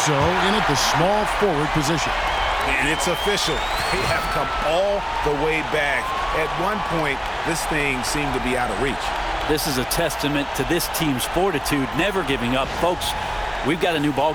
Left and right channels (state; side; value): identical; both; correlation 1.00